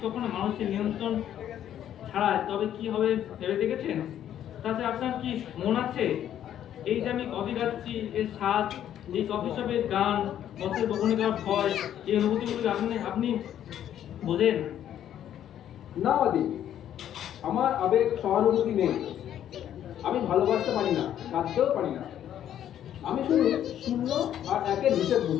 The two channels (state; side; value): quieter; right; 10.7 dB